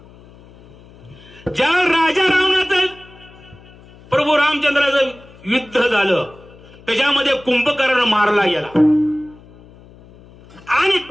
ज्या राजा रावणाचं प्रभू रामचंद्राचं युद्ध झालं त्याच्यामध्ये कुंभकर्ण मारला गेला. आणि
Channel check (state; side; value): noise; left; hum, 23 dB below the sound